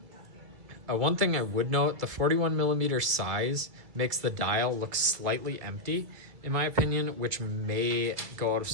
one thing I would note, the 41mm size makes the dial look slightly empty, in my opinion, which may go out of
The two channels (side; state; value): left; late; 2.3 ms